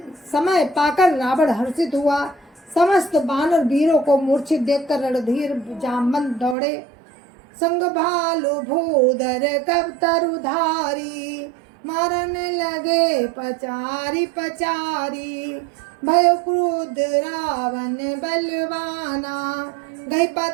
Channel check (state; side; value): drops out; left; at 6.6 s